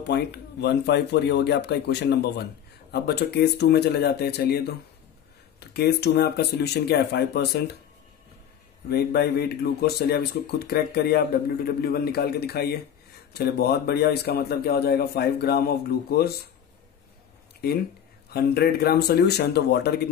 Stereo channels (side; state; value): right; quieter; 9.4 dB